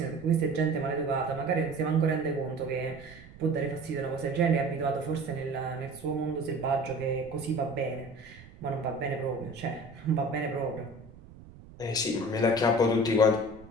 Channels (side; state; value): right; noise; rumble, 20 dB below the sound